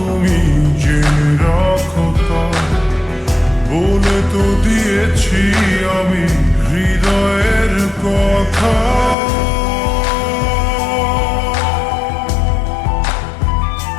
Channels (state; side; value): drops out; right; at 9.2 s